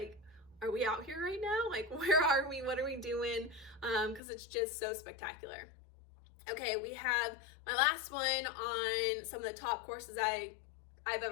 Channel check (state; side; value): drops out; right; at 4.2 s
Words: are we out here right now? Like, where are we? What are we doing? Because it's just so spectacular. Okay, we have my last one on some of the top courses I've